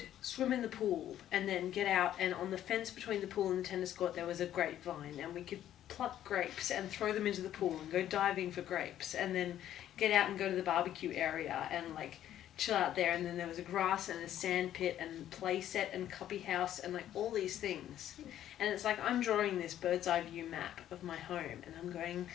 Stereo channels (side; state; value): right; quieter; 11.6 dB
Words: swim in the pool and then get out, and on the fence between the pool and the tennis court there was a grapevine, and we could pluck grapes and throw them into the pool and go diving for grapes, and then get out and go to the barbecue area and like chill out there. And then there was a grass and a sand pit and play set and cubby house and like all these things. And it's like I'm drawing this bird's eye view map of my home, and I'm going